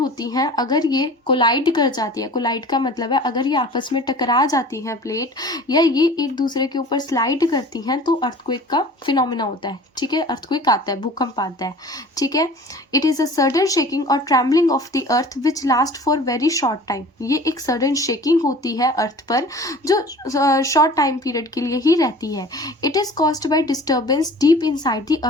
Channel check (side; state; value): both; normal; correlation 0.43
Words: हैं अगर ये कोलाइड कर जाती है, कोलाइड का मतलब है अगर ये आपस में टकरा जाती हैं प्लेट, या ये एक दूसरे के ऊपर स्लाइड करती हैं, तो अर्थक्वेक का फिनोमिना होता है, ठीक है, अर्थक्वेक आता है, भूकंप आता है, ठीक है। It is a sudden shaking और trembling of the earth which last for very short time. ये एक सडन शेकिंग होती है अर्थ पर जो शॉर्ट टाइम पीरियड के लिए ही रहती है। It is caused by disturbance deep inside the